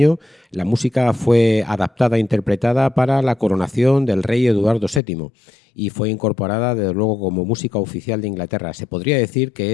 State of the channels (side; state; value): right; drops out; at 5.0 s